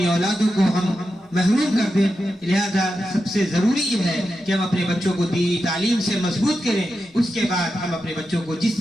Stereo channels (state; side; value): normal; both; correlation 0.89